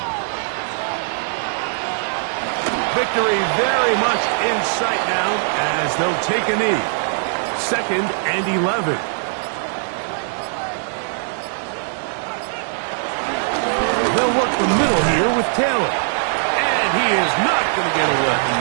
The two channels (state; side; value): silent; left; digital silence